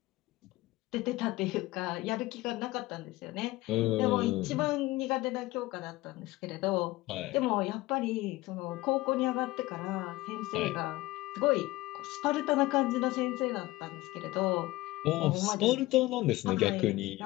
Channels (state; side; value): quieter; right; 18.9 dB